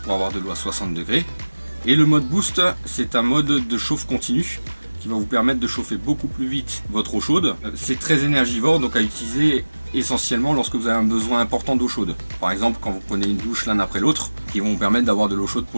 pour avoir de l'eau à 60 degrés. Et le mode boost, c'est un mode de chauffe continu qui va vous permettre de chauffer beaucoup plus vite votre eau chaude. C'est très énergivore, donc à utiliser essentiellement lorsque vous avez un besoin important d'eau chaude. Par exemple, quand vous prenez une douche l'un après l'autre, qui vont vous permettre d'avoir de l'eau chaude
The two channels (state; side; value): inverted; both; correlation -1.00